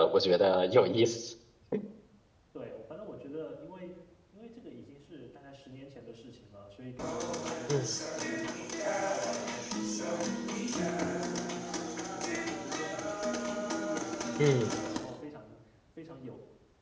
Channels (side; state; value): both; identical; correlation 1.00